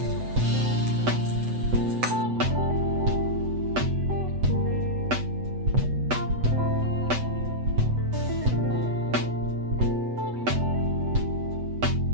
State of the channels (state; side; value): late; left; 8.0 ms